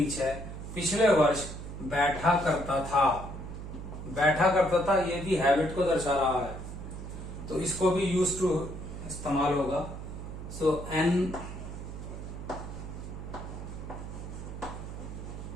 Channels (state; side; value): noise; right; hum, 9 dB below the sound